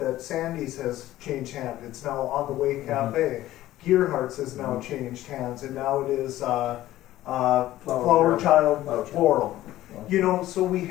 Sandy's has changed hands. It's now On the Way Cafe. Gearhart's has now changed hands, and now it is Flower Child Floral. So we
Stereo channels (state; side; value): quieter; right; 14.9 dB